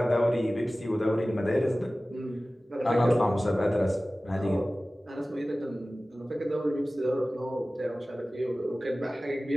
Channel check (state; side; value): normal; both; correlation 0.97